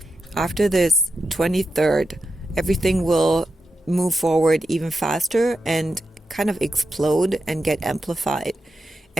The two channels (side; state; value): both; normal; correlation 0.88